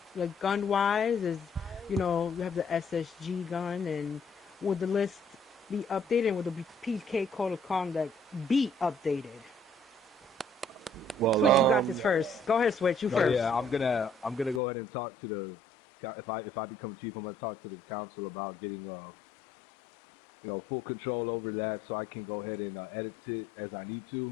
Like gun-wise, you know, you have the SSG gun, and would the list be updated? And would the PK code of conduct be updated? Well, Switch, you got this first. Go ahead, Switch. You first. Yeah, I'm gonna go ahead and talk to the. If I become chief, I'm gonna talk to the council about getting you know, full control over that, so I can go ahead and edit it as I need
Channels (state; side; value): drops out; right; at 14.6 s